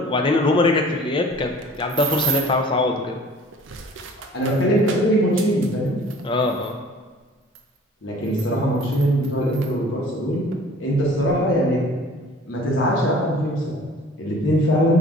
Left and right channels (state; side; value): normal; both; correlation 0.49